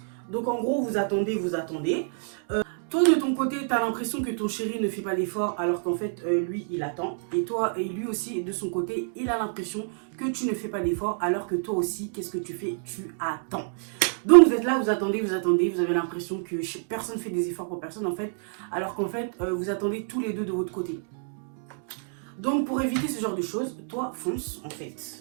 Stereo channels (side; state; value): left; silent; digital silence